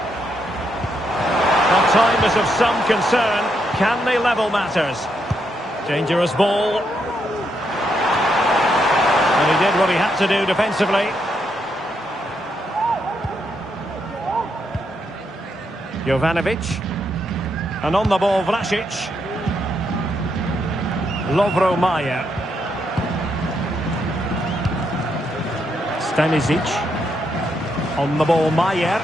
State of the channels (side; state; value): both; normal; correlation 0.79